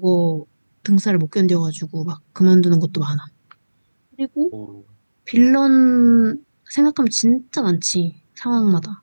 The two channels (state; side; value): inverted; both; correlation -1.00